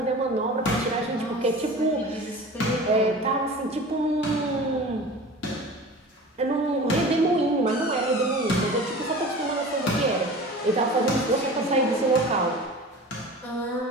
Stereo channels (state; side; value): normal; both; correlation 0.38